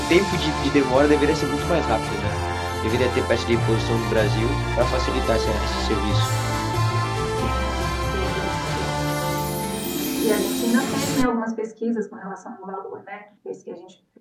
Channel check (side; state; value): both; identical; correlation 1.00